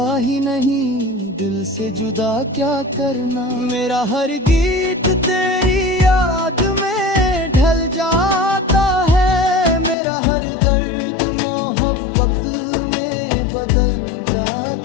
ही नहीं दिल से जुदा क्या करना। मेरा हर गीत तेरी याद में ढल जाता है, मेरा हर दर्द मोहब्बत में बदल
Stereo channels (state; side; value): drops out; right; at 10.0 s